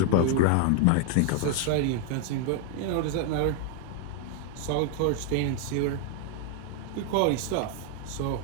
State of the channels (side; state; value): both; different; correlation 0.00